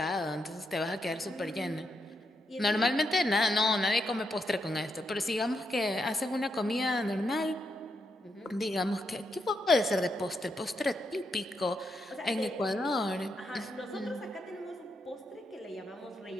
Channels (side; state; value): both; normal; correlation 0.82